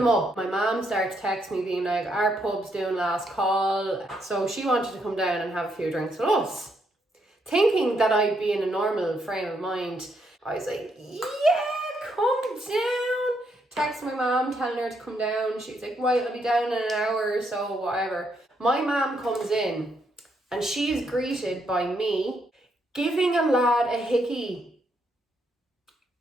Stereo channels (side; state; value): both; normal; correlation 0.76